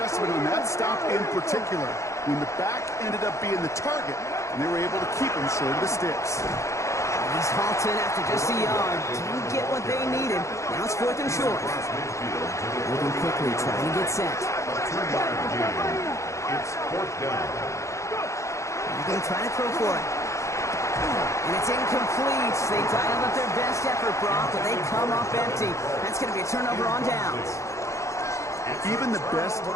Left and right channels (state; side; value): late; right; 0.15 ms